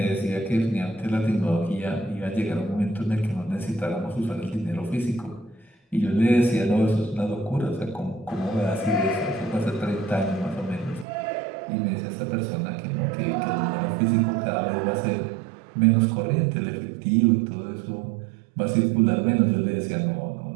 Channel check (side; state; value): left; drops out; at 11.1 s